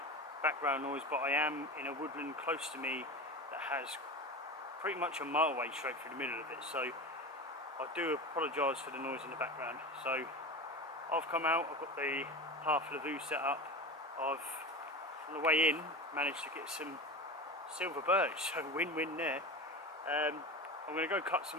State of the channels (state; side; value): normal; both; correlation 0.27